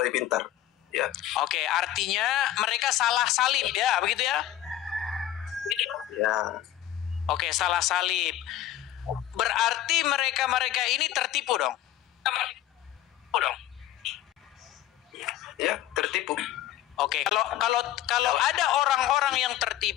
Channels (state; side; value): quieter; right; 12.6 dB